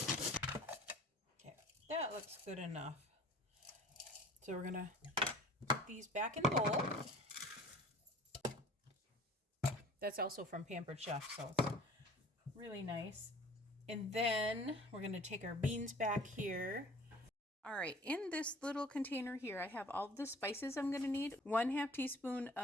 Okay, that looks good enough. So we're going to put these back in the bowl. That's also from Pampered Chef, so it's really nice. And then we're going to take our beans back here. All right, in this little container here, I have all the spices I'm going to need. 1/2 teaspoon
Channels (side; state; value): both; normal; correlation 0.47